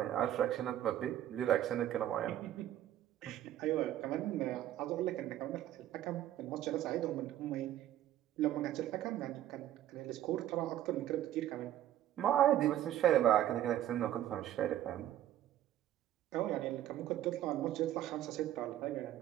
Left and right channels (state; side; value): quieter; left; 12.4 dB